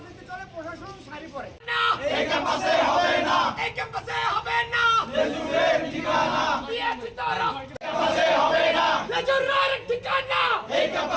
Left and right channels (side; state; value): both; identical; correlation 1.00